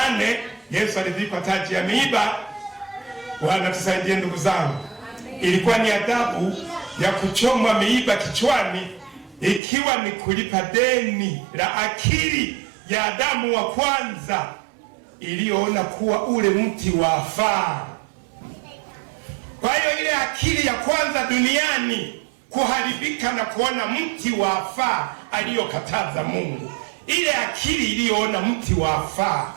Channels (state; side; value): drops out; left; at 9.6 s